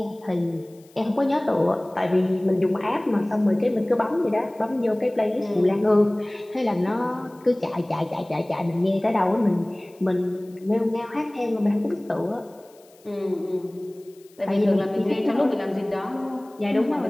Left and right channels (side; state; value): left; noise; hiss, 29 dB below the sound